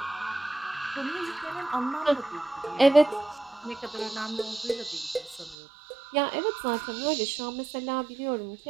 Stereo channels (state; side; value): drops out; left; at 5.6 s